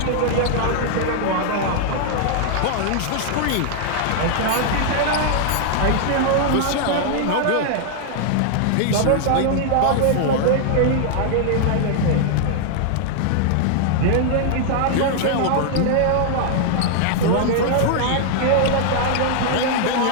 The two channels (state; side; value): different; both; correlation -0.01